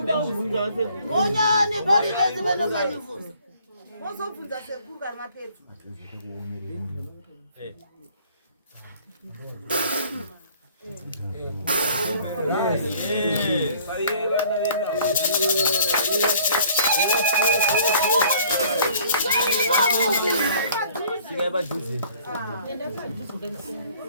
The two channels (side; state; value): both; inverted; correlation -0.55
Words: kubvunza ase. Onyani pali pezi vanofanifusa. Wozobvunza sekuru kana mapedza.